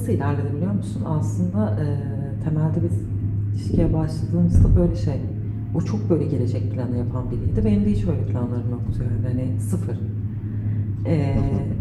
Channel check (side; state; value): both; identical; correlation 1.00